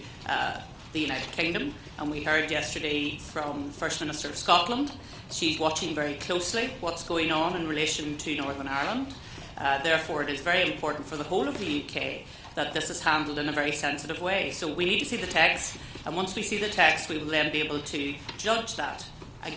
the United Kingdom, and we heard yesterday from the First Minister of Scotland. She's watching very closely what's going on in relation to Northern Ireland. Therefore, it is very important for the whole of the UK that this is handled in a very sensitive way. So we need to see the text, and once we see the text, we will then be able to judge that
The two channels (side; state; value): both; identical; correlation 1.00